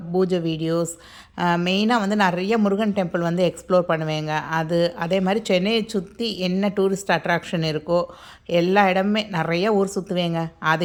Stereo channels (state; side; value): identical; both; correlation 1.00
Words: பூஜை வீடியோஸ், மெயினாக வந்து நிறைய முருகன் டெம்பிள் வந்து எக்ஸ்ப்ளோர் பண்ணுவேங்க. அதே மாதிரி சென்னையை சுற்றி என்ன டூரிஸ்ட் அட்ராக்ஷன் இருக்கோ எல்லா இடமுமே நிறைய ஊர் சுற்றுவேங்க.